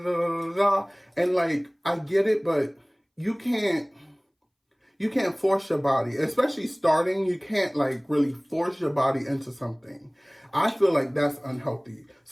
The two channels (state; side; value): identical; both; correlation 1.00